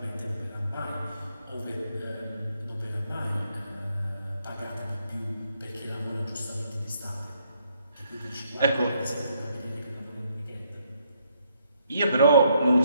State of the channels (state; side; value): inverted; both; correlation -0.73